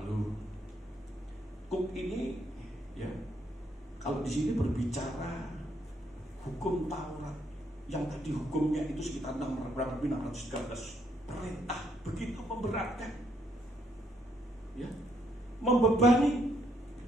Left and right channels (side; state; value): both; normal; correlation 0.72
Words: kuk ini ya, kalau di sini berbicara hukum Taurat yang tadi hukumnya itu sekitar 613 perintah, begitu memberatkan, ya, membebani.